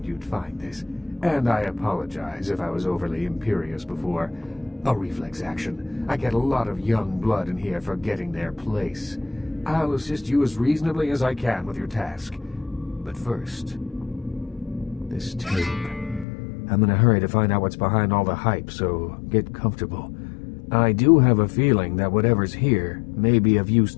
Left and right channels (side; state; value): right; drops out; at 16.2 s